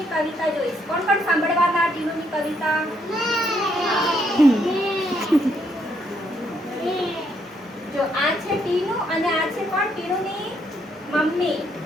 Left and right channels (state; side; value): normal; both; correlation 0.73